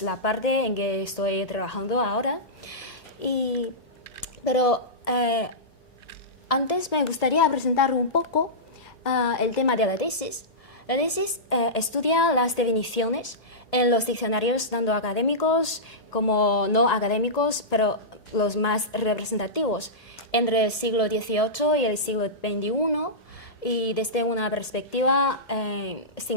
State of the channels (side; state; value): both; normal; correlation -0.16